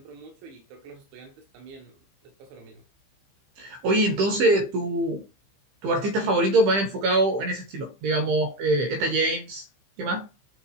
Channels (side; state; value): left; late; 15 ms